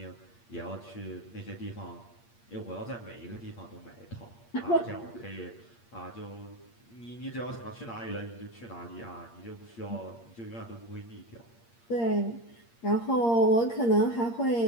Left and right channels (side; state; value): right; late; 8.6 ms